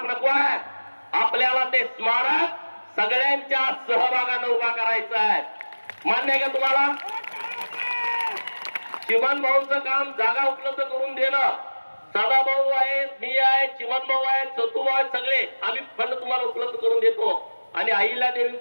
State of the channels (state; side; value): inverted; both; correlation -1.00